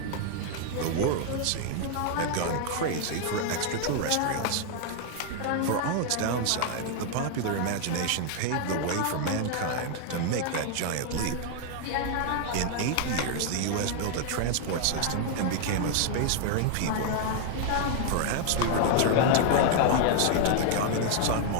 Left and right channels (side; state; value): both; different; correlation 0.00